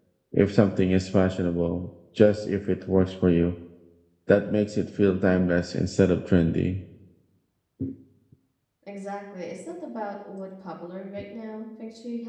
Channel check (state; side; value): identical; both; correlation 1.00